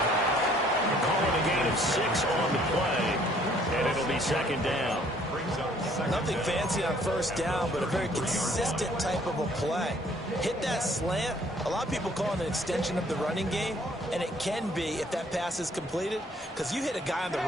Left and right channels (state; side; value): normal; both; correlation 0.61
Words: Calling a gain of 6 on the play, and it'll be 2nd down. Nothing fancy on 1st down, but a very consistent type of a play. Hit that slant. A lot of people call it an extension of the running game, and it can be if that pass is completed, because you hit a guy on the